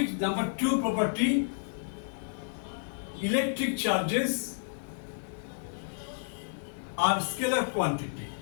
Number 2 property, electric charges are scalar quantity.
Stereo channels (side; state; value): right; silent; digital silence